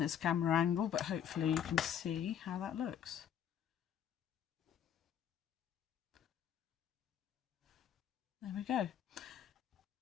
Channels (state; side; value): quieter; right; 9.2 dB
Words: camera angle, but hopefully you can see how that looks. There we go.